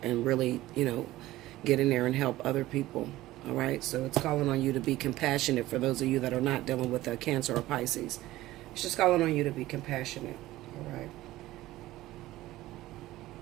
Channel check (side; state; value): left; quieter; 16.5 dB